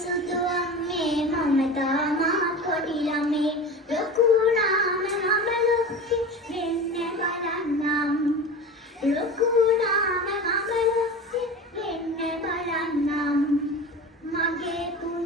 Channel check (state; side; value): normal; both; correlation 0.32